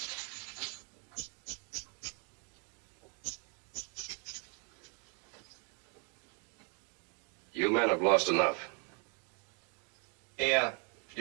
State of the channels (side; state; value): left; quieter; 36.7 dB